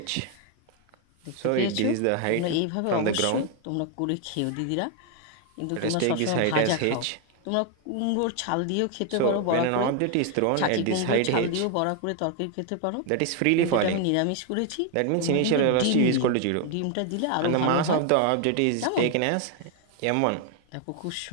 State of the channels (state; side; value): different; both; correlation 0.01